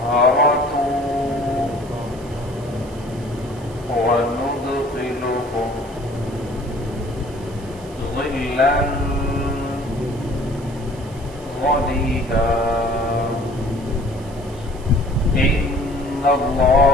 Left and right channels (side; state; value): right; noise; hiss, 22 dB below the sound